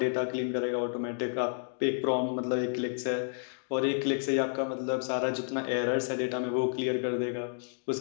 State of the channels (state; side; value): silent; right; digital silence